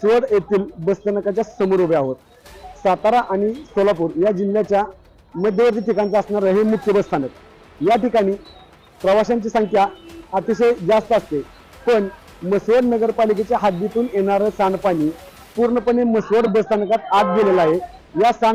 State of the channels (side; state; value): both; identical; correlation 1.00